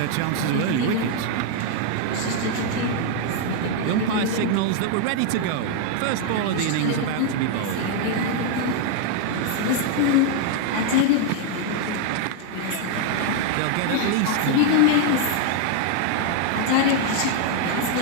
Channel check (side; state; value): both; different; correlation 0.00